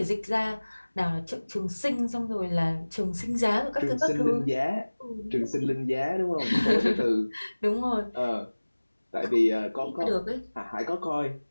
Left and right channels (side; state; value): both; inverted; correlation -1.00